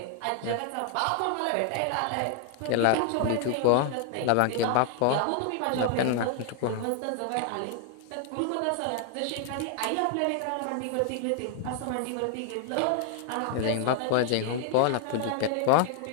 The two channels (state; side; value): different; both; correlation 0.00